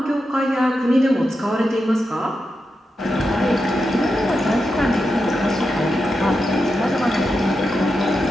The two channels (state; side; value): normal; both; correlation 0.88